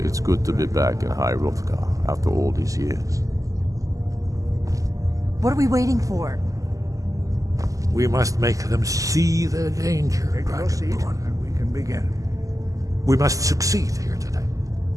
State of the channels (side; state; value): left; late; 0.16 ms